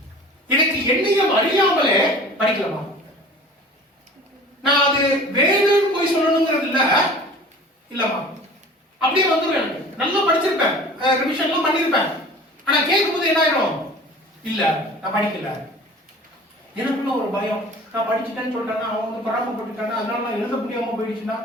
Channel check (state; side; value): normal; both; correlation 0.43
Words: எனக்கு என்னையும் அறியாமலே படிக்கலாமா? நான் அது வேணும்னு போய் சொல்லணுங்கிறது இல்லம்மா, அப்படியே வந்துடும். நல்லா படிச்சிருப்பேன், ரிவிஷன் எல்லாம் பண்ணிருப்பேன். ஆனா கேட்கும்போது என்ன ஆயிடும்? இல்ல நான் படிக்கல. எனக்குள்ள ஒரு பயம், நான் படிச்சுட்டேன்னு சொல்றேன்னா அவன் வந்து பராமப்பட்டுட்டானா, அதனால நான் எழுத முடியாம போயிடுச்சுன்னா